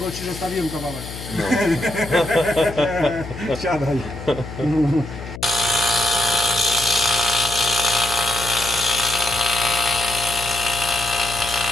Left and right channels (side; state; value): left; noise; hum, 11 dB below the sound